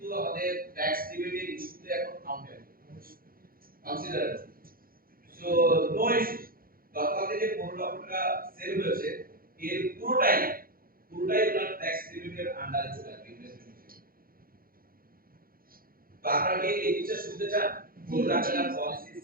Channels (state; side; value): late; left; 0.42 ms